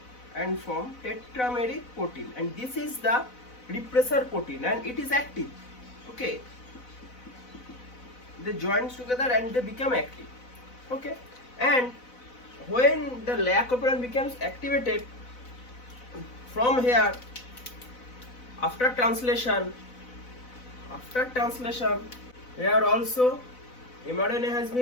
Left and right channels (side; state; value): right; late; 4.0 ms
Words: and form tetrameric protein, and this is the repressor protein and it is active. Okay, they join together and they become active. Okay, and when the lac operon becomes activated from here, after translation here also mRNA has